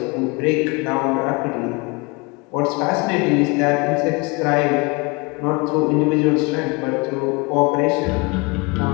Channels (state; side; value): quieter; right; 27.9 dB